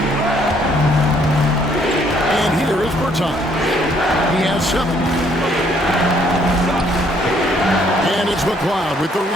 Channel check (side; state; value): both; normal; correlation 0.66